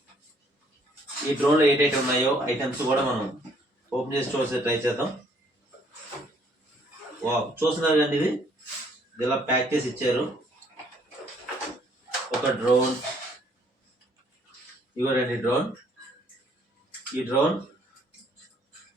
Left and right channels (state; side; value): normal; both; correlation 0.64